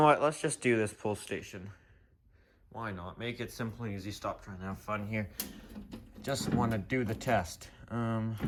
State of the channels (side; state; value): both; identical; correlation 1.00